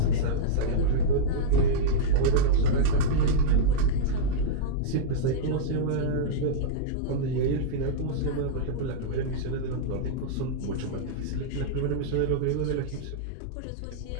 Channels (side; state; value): both; different; correlation -0.04